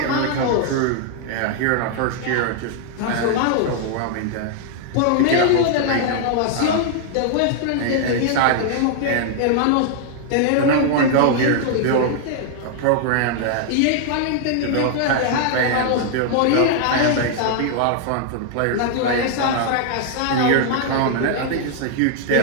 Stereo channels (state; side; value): different; both; correlation 0.00